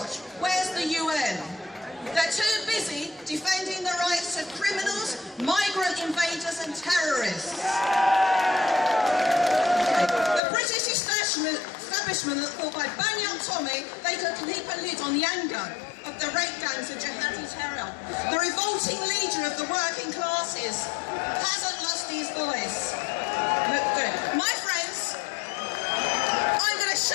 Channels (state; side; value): drops out; right; at 10.4 s